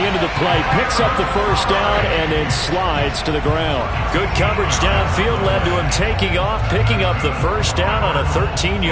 end of the play. Picks up the first down and then slides to the ground. Good coverage downfield led to him taking off, picking up the first down on a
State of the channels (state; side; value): identical; both; correlation 1.00